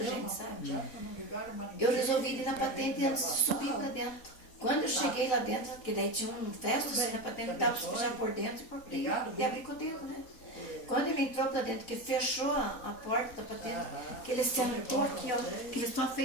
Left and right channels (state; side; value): late; right; 4.1 ms